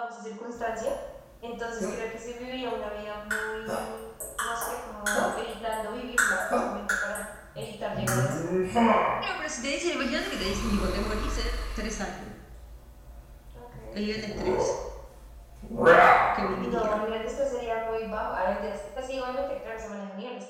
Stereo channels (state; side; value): identical; both; correlation 1.00